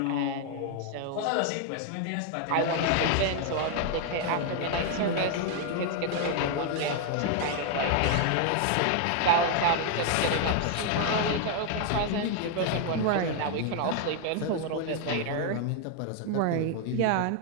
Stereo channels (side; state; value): both; different; correlation 0.00